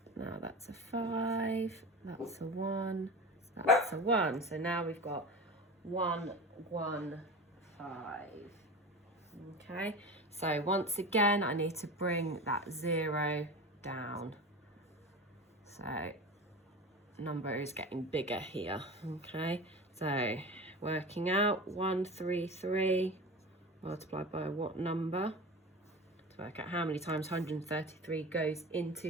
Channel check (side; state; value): both; normal; correlation 0.30